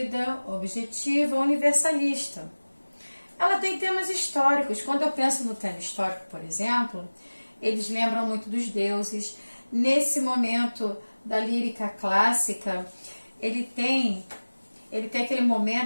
objetiva, universalista. Ela tem temas históricos. Quando eu penso no tema histórico, por exemplo, eles lembram muito dos deuses. Nesse momento da lírica clássica, ele tem aquele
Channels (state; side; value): inverted; both; correlation -1.00